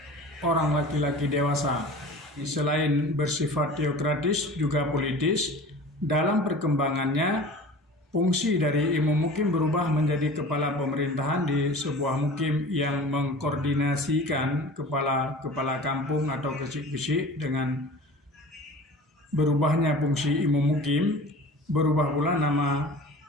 orang laki-laki dewasa. Selain bersifat teokratis juga politis, dalam perkembangannya fungsi dari imam mukim berubah menjadi kepala pemerintahan di sebuah mukim yang mengkoordinasikan kepala kampung atau kecik-kecik. Dengan berubahnya fungsi imam mukim, berubah pula nama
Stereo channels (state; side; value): normal; both; correlation 0.40